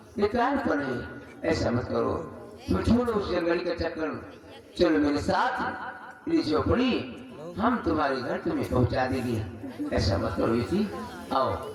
बेकार पर है, ऐसा मत करो। तुम छोड़ो उस जंगली का चक्कर, चलो मेरे साथ मेरी झोपड़ी, हम तुम्हारे घर तुम्हें पहुंचा देंगे। ऐसा मत करो बेटी, आओ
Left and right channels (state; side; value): identical; both; correlation 1.00